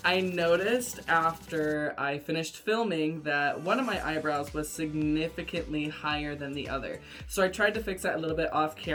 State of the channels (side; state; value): both; identical; correlation 1.00